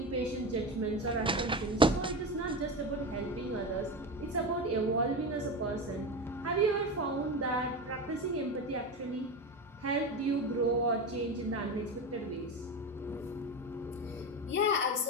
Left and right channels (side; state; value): both; normal; correlation 0.21